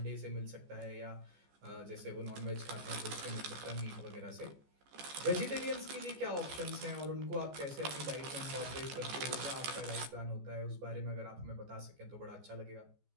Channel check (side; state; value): left; late; 14 ms